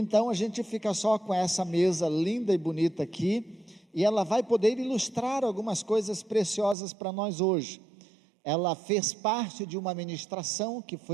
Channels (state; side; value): drops out; left; at 6.8 s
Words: a gente fica só com essa mesa linda e bonita aqui, e ela vai poder ilustrar algumas coisas preciosas para nós hoje. Ela fez parte de uma ministração que